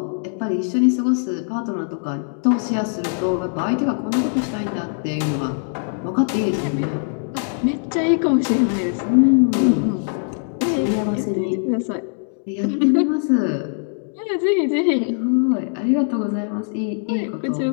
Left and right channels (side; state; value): right; silent; 62 dB below the other